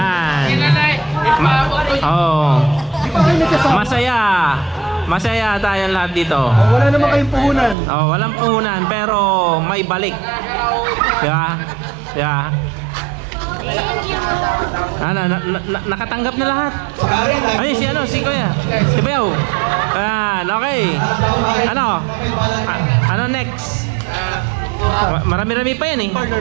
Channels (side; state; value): left; drops out; at 7.8 s